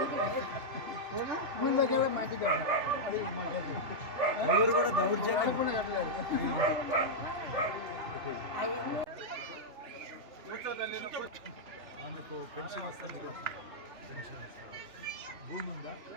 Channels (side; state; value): left; late; 3.1 ms